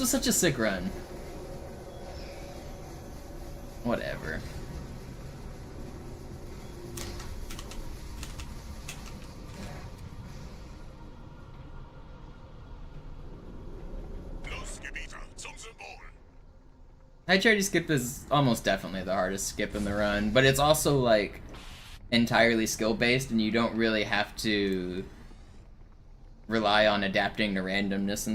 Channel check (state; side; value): identical; both; correlation 1.00